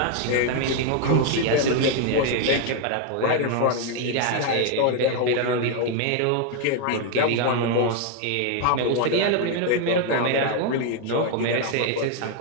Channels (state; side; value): different; both; correlation 0.01